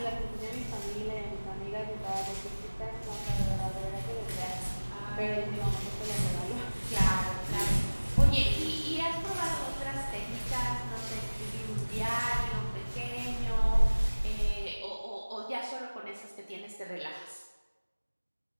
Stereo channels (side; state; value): both; inverted; correlation -1.00